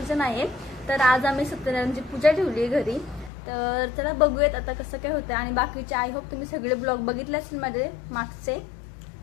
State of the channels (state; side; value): drops out; right; at 3.3 s